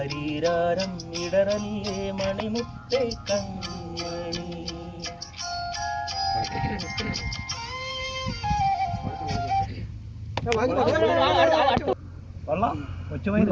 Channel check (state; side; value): identical; both; correlation 1.00